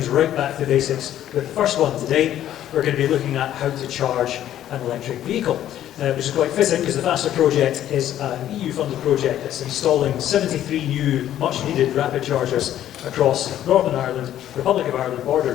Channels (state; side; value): quieter; right; 11.8 dB